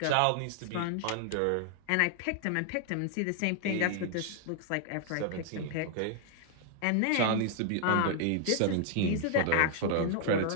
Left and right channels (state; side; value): different; both; correlation 0.00